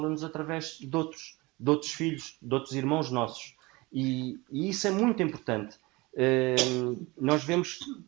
através de outros filhos, de outros irmãos nossos, e isso é muito importante. Nós vemos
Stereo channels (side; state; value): left; quieter; 23.2 dB